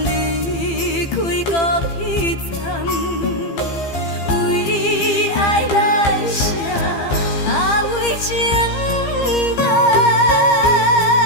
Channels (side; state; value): right; late; 15 ms